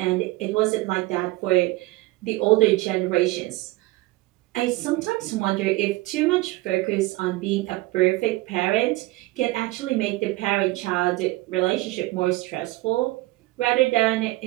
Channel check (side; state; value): left; quieter; 20.0 dB